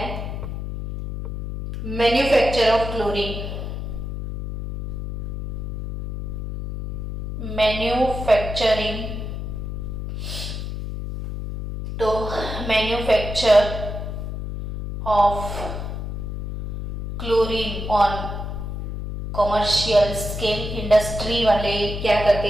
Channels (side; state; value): left; noise; hum, 5 dB below the sound